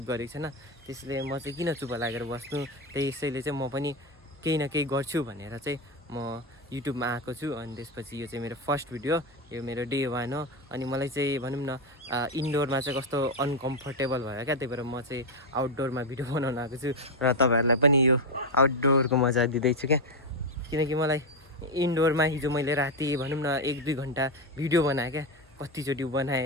गरेको छैन। त्यसैले म चाहिँ किन चुप लागेर बस्नु, त्यसैले चाहिँ म पनि केही न केही गर्छु भनेर चाहिँ म युट्युबमा आएको छु। अनि त्यसपछि यो चाहिँ मेरो फर्स्ट भिडियो, यो मेरो डे 1 हो। अनि मलाई चाहिँ भनौँ न इन्डोरमा चाहिँ कस्तो अनकम्फर्टेबल भयो क्या, त्यही भएर म चाहिँ आउटडोरमा भिडियो बनाउन आएको छु र तपाईँहरूलाई पनि यो आउटडोरको मजा दिँदैछु क्या। किनकि मलाई इन्डोरमा हिजो मैले राति भनौँ न 1-2 घन्टा भिडियो बनाएँ क्या। कतिचोटि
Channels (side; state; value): both; normal; correlation 0.09